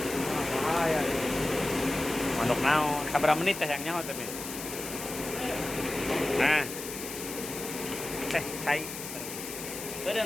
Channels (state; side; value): noise; left; hiss, 8 dB below the sound